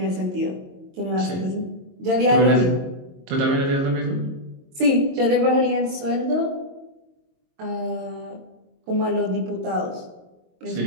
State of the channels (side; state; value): left; late; 22 ms